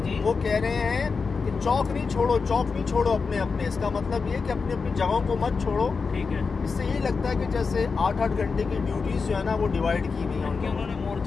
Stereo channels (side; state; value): right; quieter; 4.9 dB